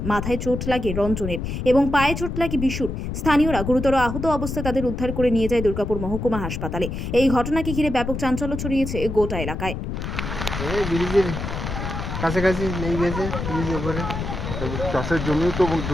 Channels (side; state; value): left; noise; rumble, 5 dB below the sound